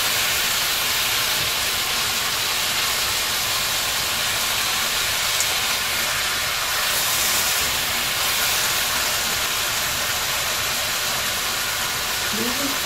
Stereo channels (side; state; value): both; identical; correlation 1.00